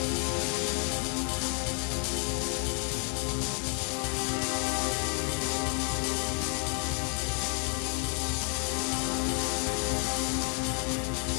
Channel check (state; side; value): quieter; right; 39.4 dB